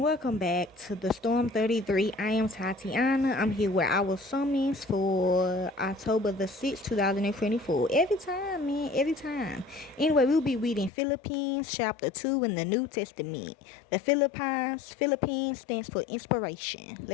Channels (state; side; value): drops out; right; at 10.9 s